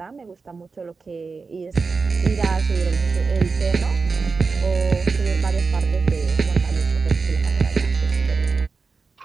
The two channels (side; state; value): left; quieter; 4.6 dB